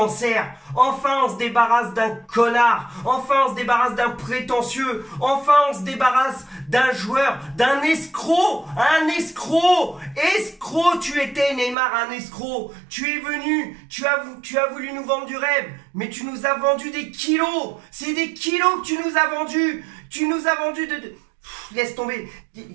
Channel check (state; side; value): drops out; left; at 11.8 s